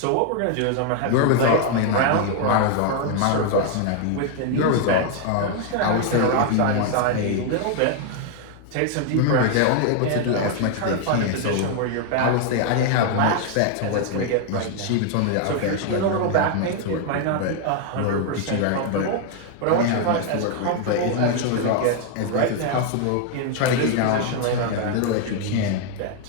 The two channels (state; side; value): different; both; correlation 0.00